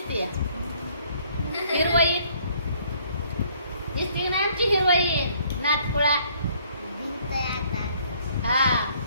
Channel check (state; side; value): inverted; both; correlation -0.62